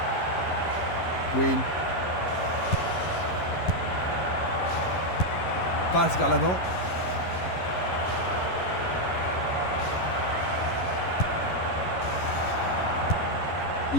Quinn. Passe vers l'avant.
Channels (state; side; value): late; right; 11 ms